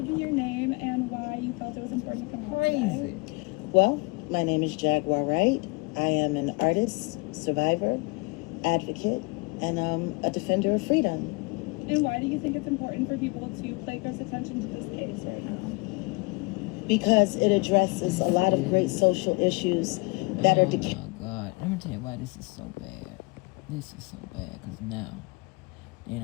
me your name and why you felt it was important to come on Crazy. Well, my name is J&gu&r Wight. I am an artist, survivor, advocate, and a defender of freedom. And why do you think it's important for people to pay close attention to this case right now? Because it addresses a lot of great social issues that are Oh my God. Let me tell you why this is so bad. This is so bad because now they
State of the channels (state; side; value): quieter; right; 27.7 dB